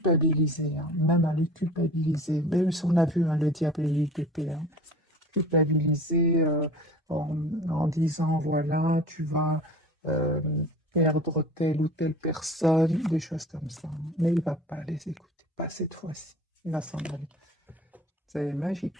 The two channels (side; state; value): both; normal; correlation 0.42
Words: hein, même à le culpabiliser. Même si on a vu, hein, le diable et l'UTP, hein, culpabiliser en disant, voilà, tu vas euh, perdre telle ou telle personne, des choses comme ça, hein. Mais il ne va pas les écouter, pas cette fois-ci. Il va s'en aller. C'est